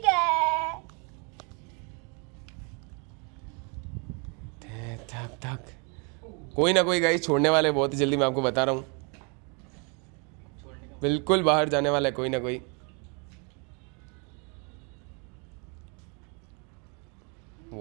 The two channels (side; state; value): left; quieter; 34.8 dB